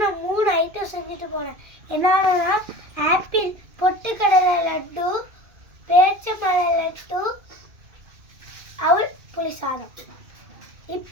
நான் 3 ஐட்டம் செஞ்சுட்டு போனேன். என்னன்னா ஆப்பிள், பொட்டுக்கடலை லட்டு, பேரிச்சம்பழ லட்டு, அவல் புளி சாதம்.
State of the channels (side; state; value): left; late; 2.6 ms